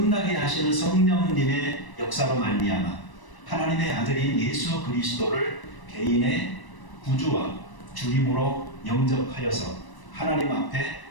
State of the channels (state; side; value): late; right; 1.0 ms